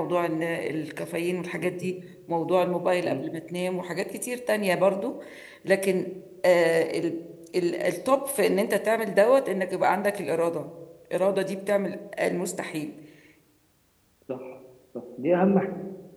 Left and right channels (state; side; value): identical; both; correlation 1.00